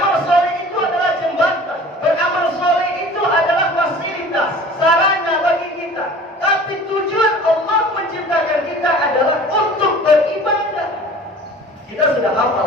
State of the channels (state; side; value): normal; both; correlation 0.44